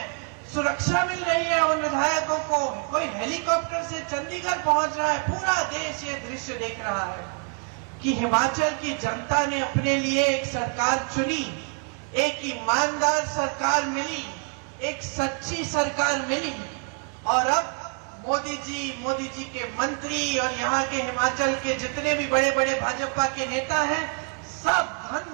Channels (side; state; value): left; quieter; 39.1 dB